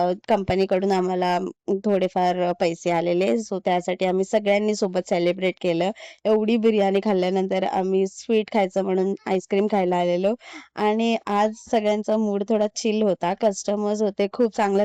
कंपनीकडून आम्हाला थोडेफार पैसे आलेले, सो त्यासाठी आम्ही सगळ्यांनी सोबत सेलिब्रेट केलं. एवढी बिर्याणी खाल्ल्यानंतर आम्ही स्वीट खायचं म्हणून आईस्क्रीम खायला आलेलो. आणि आज सगळ्यांचा मूड थोडा चिल होता. कस्टमर्स होते, खूप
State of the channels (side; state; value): both; identical; correlation 1.00